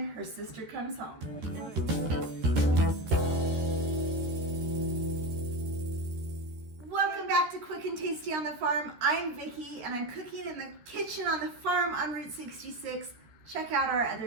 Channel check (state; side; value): late; left; 13 ms